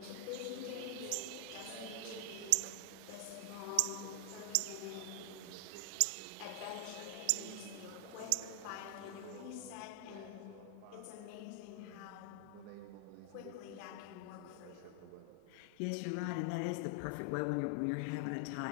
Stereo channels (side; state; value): both; different; correlation 0.00